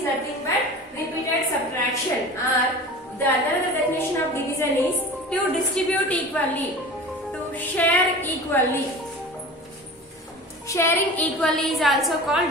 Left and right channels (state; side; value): normal; both; correlation 0.36